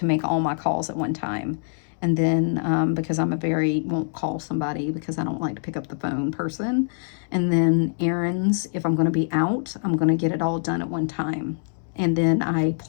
make all my calls at one time. And then because I'm won't call somebody because I don't like to pick up the phone person. And then errands, if I'm going to be out, I'm going to get it all done at one time. And then I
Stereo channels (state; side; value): silent; right; 62 dB below the other